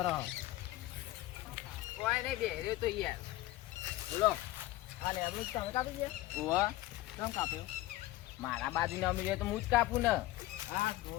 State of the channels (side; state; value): right; quieter; 16.7 dB